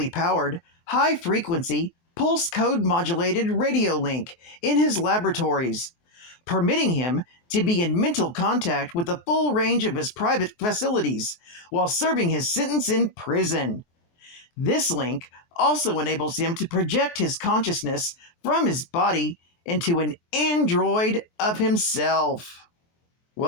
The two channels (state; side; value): late; right; 23 ms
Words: powered, high-frequency, pulse code modulated radio link in his laboratories, permitting him to be in mental contact with the full range of his private facilities while serving his sentence in prison. This link also enables him to project his consciousness from his body into an android of himself.